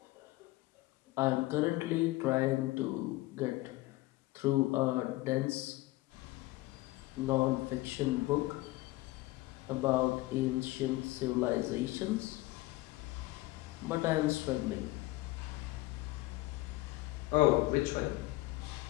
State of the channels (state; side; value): quieter; right; 19.3 dB